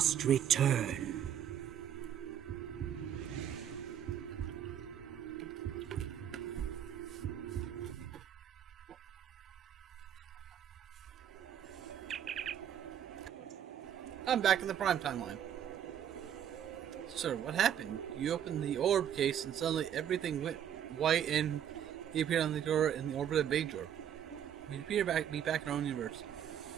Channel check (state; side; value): quieter; left; 9.6 dB